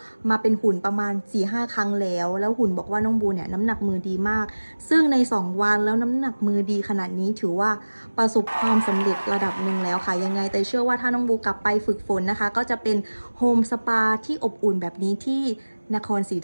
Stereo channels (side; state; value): both; inverted; correlation -1.00